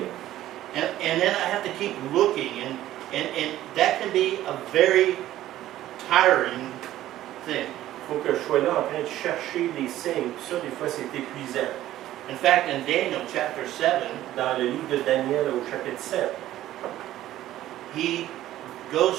And then I have to keep looking, and that can be a very tiring thing. Il faut que je sois là en train de chercher des signes. Puis ça, des fois, c'est épuisant. In fact, in Daniel chapter 7, Dans le livre de Daniel, au chapitre 7, he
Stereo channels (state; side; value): quieter; left; 13.9 dB